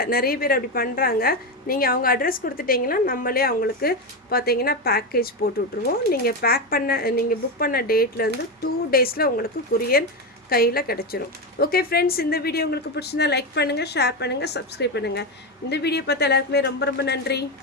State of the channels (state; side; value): normal; both; correlation 0.13